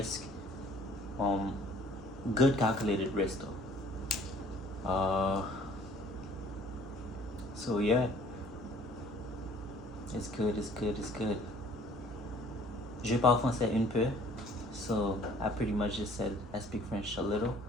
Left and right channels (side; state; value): both; normal; correlation 0.55